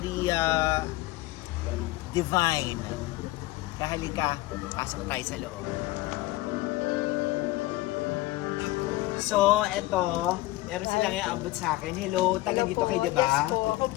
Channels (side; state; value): right; quieter; 18.5 dB